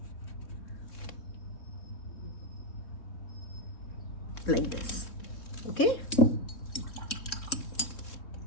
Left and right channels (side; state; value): right; late; 3.6 ms